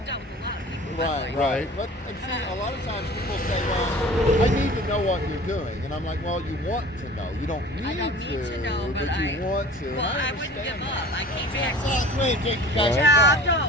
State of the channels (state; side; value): normal; both; correlation 0.43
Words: dealt with a lot of people. Right. Right. But and see, a lot of times people say, well, I need to know what you're doing. And I'm like, well, you want to know. You don't need, I don't need to know, but but you want to. Well, And I wouldn't understand give that. up. I came back. Take you guys Job,